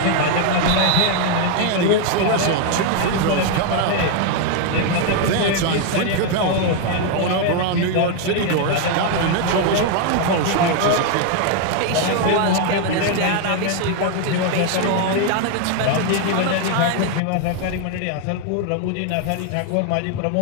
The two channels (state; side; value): different; both; correlation 0.01